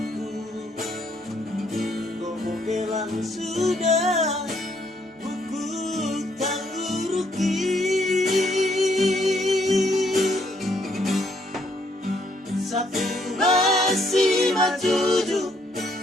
gomo bilang sudah buku tangguruki satu masih majuju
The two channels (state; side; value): normal; both; correlation 0.70